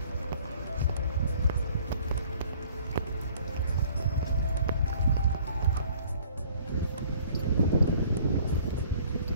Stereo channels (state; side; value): inverted; both; correlation -0.54